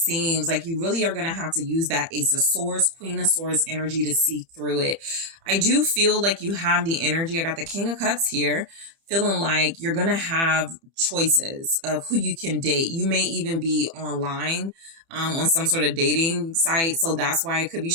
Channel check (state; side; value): late; left; 30 ms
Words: Like you really are going to have to use that Ace of Swords, Queen of Swords energy to see through it. I do feel like you have the energy. I got the King of Cups here, feeling like you're going to have choices of who you can date. You may even be online on some sort of dating site. So that's why it could be